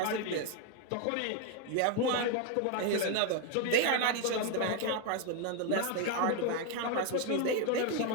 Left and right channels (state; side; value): different; both; correlation 0.01